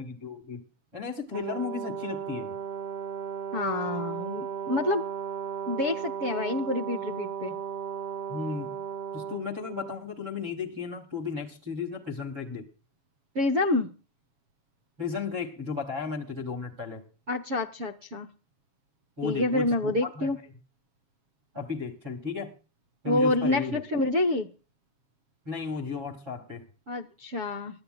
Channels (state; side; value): late; left; 7.3 ms